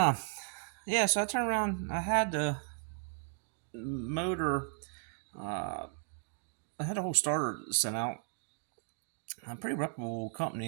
yeah, so I turned around, I had the motor, uh, I had a whole starter sent out, a pretty reputable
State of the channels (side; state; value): left; silent; 54 dB below the other